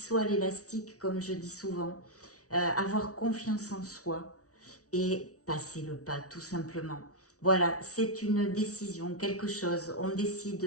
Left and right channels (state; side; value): late; right; 0.67 ms